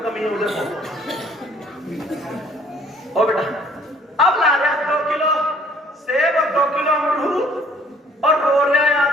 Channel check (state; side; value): normal; both; correlation 0.59